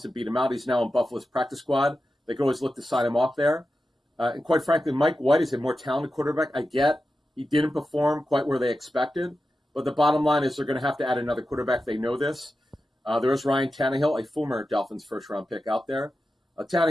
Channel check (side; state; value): both; normal; correlation 0.91